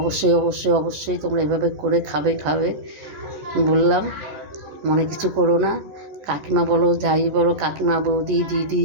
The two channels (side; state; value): left; late; 14 ms